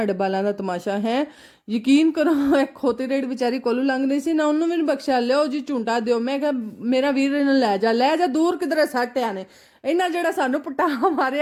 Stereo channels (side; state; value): both; identical; correlation 1.00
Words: बालां दा तमाशा है। यकीन करो एक खोती रेड बेचारी कोलू लंघ नहीं सी ना, उन्होंने भी नहीं बख्शा। लियो जी झुंटा दियो। मैं कहा मेरा वीर इन्हें लै जा दूर किधरे सट आने इन्हें जेड़ा सानू पटा